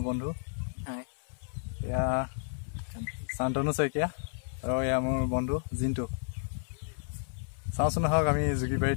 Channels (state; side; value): silent; right; 57 dB below the other